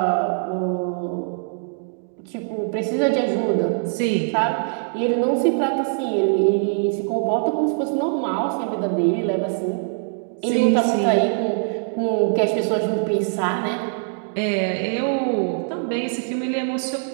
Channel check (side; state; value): left; silent; digital silence